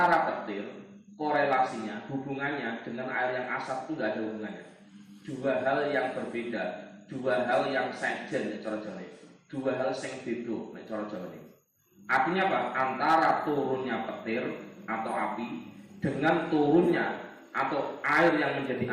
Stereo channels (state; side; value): identical; both; correlation 1.00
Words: petir korelasinya hubungannya dengan air yang asap itu nggak ada hubungannya. Dua hal yang berbeda, dua hal yang sejen cara Jawa, dua hal sing beda cara Jawa. Artinya apa? Antara turunnya petir atau api dengan turunnya atau air yang menjadi